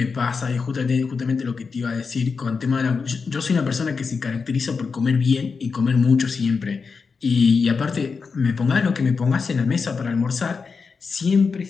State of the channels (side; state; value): right; quieter; 5.1 dB